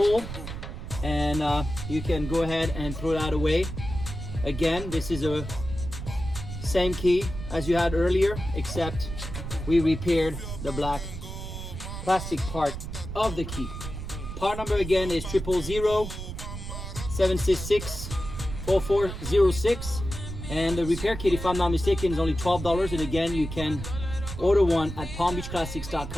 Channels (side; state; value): right; noise; rumble, 8 dB below the sound